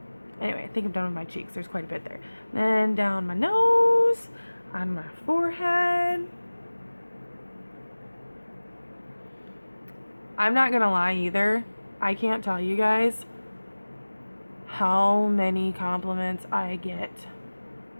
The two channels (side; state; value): both; inverted; correlation -1.00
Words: Anyway, I think I'm done with my cheeks. There's quite a bit there. Then down my nose, on my forehead. I'm not gonna lie either. I can't tell you guys how many compliments I get